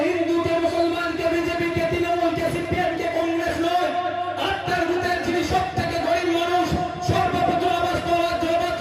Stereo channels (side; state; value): both; identical; correlation 1.00